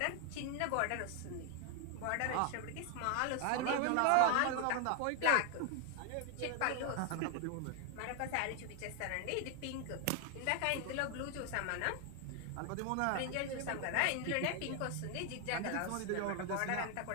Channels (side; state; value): both; different; correlation 0.00